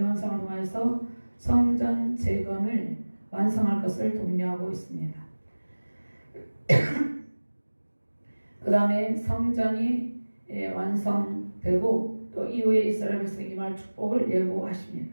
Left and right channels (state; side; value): inverted; both; correlation -1.00